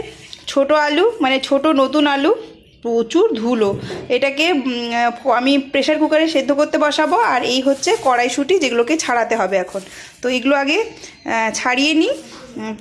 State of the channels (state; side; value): identical; both; correlation 1.00